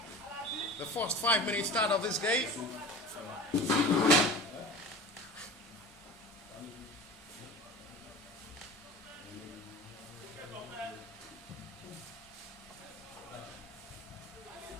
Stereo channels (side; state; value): both; normal; correlation 0.35